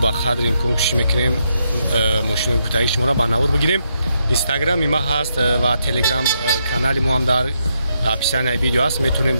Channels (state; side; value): inverted; both; correlation -0.79